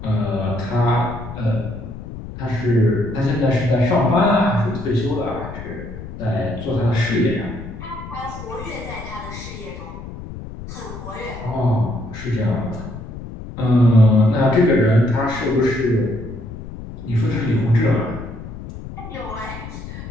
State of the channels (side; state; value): left; noise; rumble, 11 dB below the sound